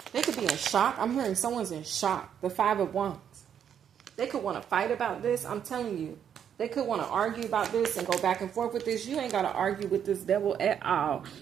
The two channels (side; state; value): left; quieter; 8.7 dB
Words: They could be in shock. I'm hearing someone's in shock. The Five of Wands. They could want to fight about this. I'm telling you. They could want to argue about this and go back and forth with this. You ain't got to argue with this devil at all.